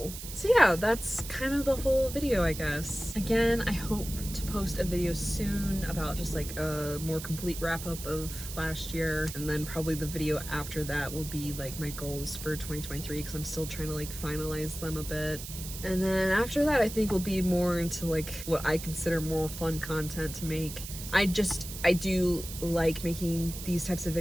So yeah, that's kind of the whole video, I guess. Again, I hope to post a video soon about just like a more complete wrap up of last year, and then probably the video after that will be like my goals for 2023, because I'm still trying to like finalize them a bit. And then after that, I think we'll be more into like what I consider more fun content to make. I do like making these types of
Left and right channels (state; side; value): noise; right; hiss, 10 dB below the sound